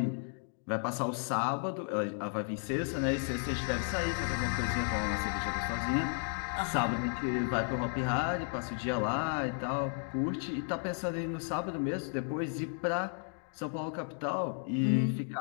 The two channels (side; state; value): right; silent; 55 dB below the other